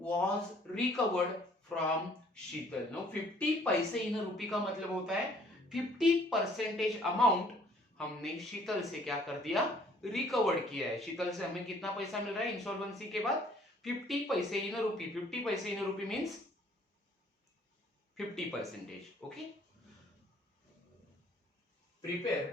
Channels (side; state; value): both; normal; correlation 0.59